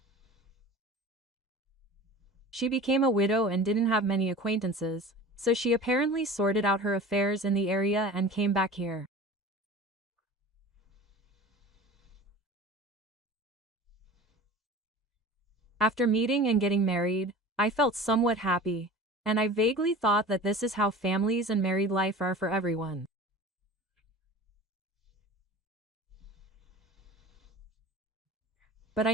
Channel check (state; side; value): normal; both; correlation 0.38